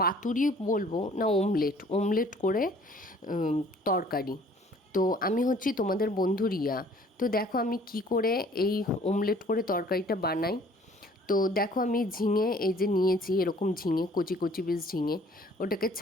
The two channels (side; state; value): both; normal; correlation 0.55